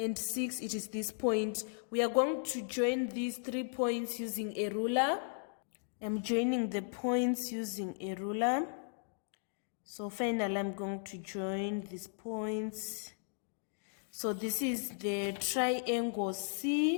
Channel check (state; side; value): silent; right; digital silence